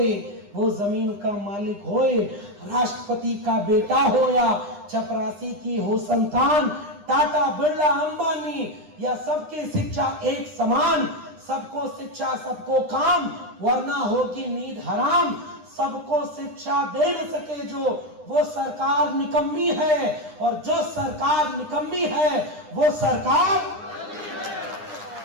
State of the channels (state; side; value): late; left; 9.8 ms